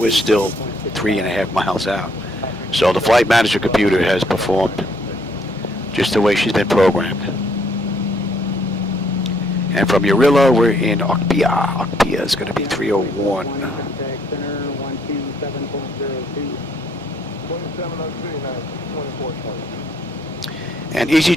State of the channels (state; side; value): normal; both; correlation 0.67